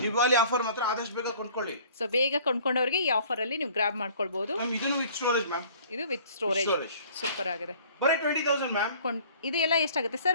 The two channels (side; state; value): both; inverted; correlation -0.52